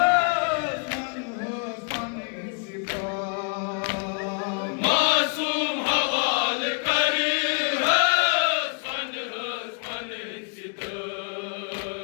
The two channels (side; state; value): right; quieter; 40.0 dB